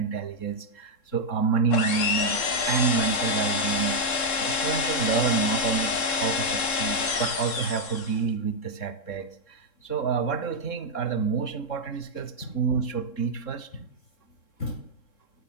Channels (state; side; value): late; right; 3.7 ms